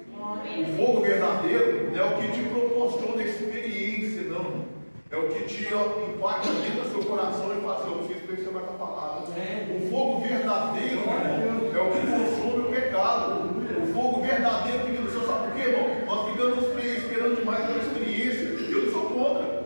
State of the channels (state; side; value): inverted; both; correlation -1.00